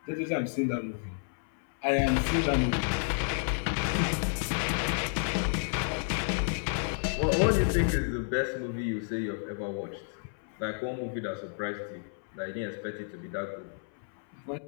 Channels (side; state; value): right; silent; 57 dB below the other